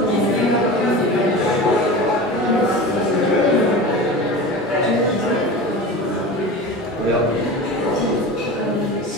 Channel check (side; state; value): both; normal; correlation 0.32